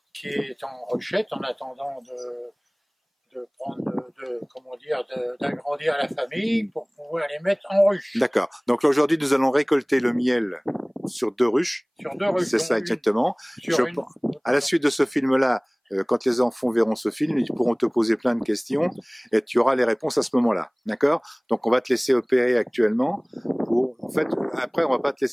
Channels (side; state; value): both; identical; correlation 1.00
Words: qui est en ruchette en attendant d'agrandir la famille pour pouvoir les mettre en ruche. D'accord. Donc aujourd'hui, nous allons récolter le miel sur 2 ruches. Sur 2 ruches. C'est ça exactement. À la suite de ce film-là, quand les enfants verront ce film, ils pourront te poser plein de questions et tu auras les réponses à ce moment-là. D'accord? Donc on va te laisser opérer actuellement. En fait, après, on va pas te